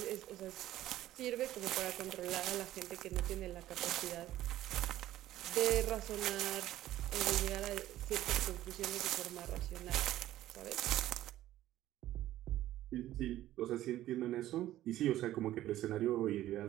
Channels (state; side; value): quieter; left; 14.1 dB